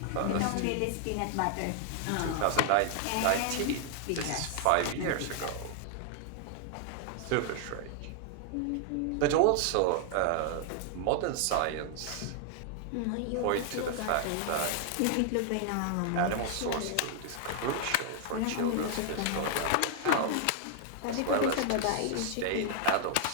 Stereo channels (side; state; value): both; different; correlation 0.00